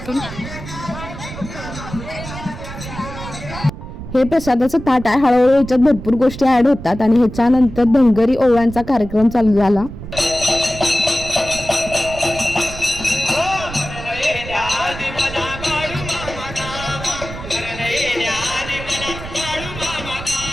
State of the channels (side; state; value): right; noise; rumble, 11 dB below the sound